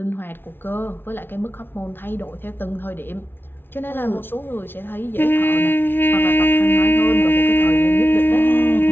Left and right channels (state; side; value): late; right; 0.11 ms